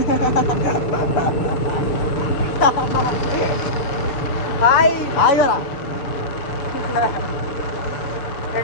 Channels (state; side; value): late; right; 7.0 ms